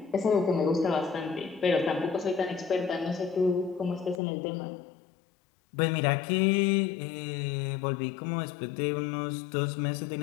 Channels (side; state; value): right; drops out; at 4.2 s